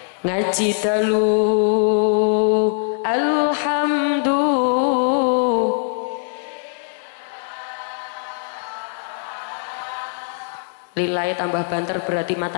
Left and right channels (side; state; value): right; silent; digital silence